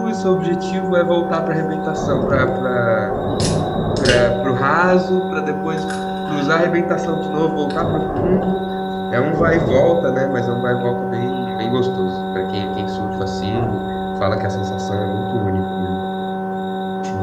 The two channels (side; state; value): both; identical; correlation 1.00